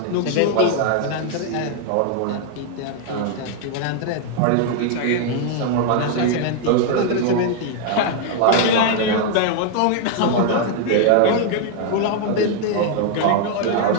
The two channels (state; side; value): different; both; correlation 0.00